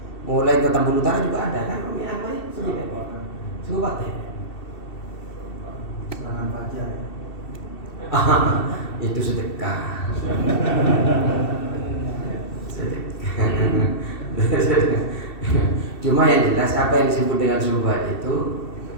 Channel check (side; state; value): right; late; 2.7 ms